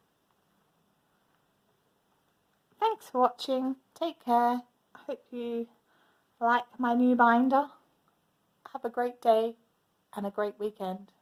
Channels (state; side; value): identical; both; correlation 1.00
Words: Thanks for watching. Take care. I hope you like my new binder. Have a great day and a great weekend.